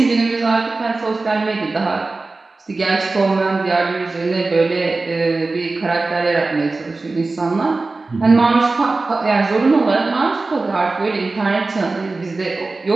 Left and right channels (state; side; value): quieter; left; 3.5 dB